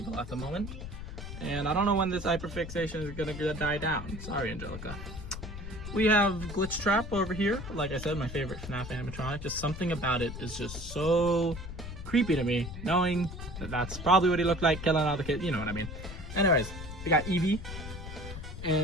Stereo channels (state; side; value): noise; left; rumble, 9 dB below the sound